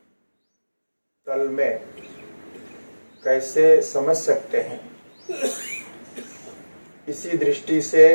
तल में कैसे समझ सकते हैं, इसी दृष्टि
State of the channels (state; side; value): inverted; both; correlation -1.00